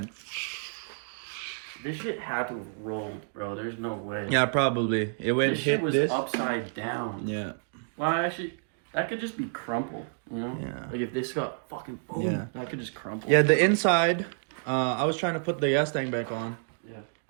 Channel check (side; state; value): left; silent; digital silence